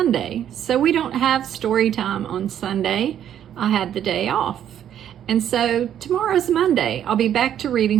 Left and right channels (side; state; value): left; quieter; 10.1 dB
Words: so we don't have story time on Sunday. I had the day off. And so tomorrow's Monday. I'll be back to reading